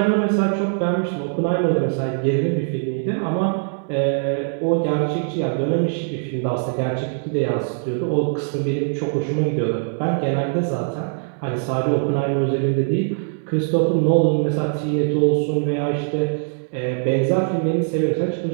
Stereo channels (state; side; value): silent; left; 64 dB below the other